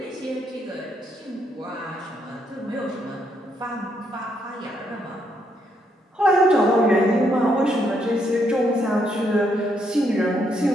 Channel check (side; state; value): both; normal; correlation 0.75